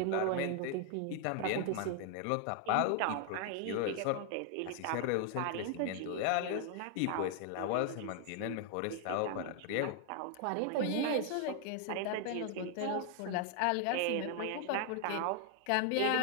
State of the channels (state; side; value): different; both; correlation 0.00